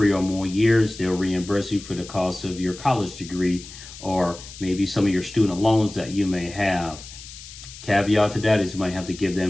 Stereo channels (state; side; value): noise; left; hiss, 15 dB below the sound